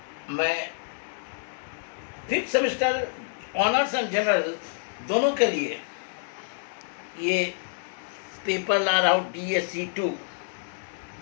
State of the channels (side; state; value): right; silent; digital silence